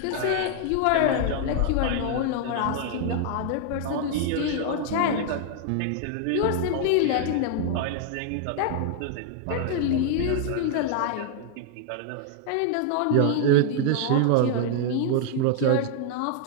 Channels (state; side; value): different; both; correlation 0.00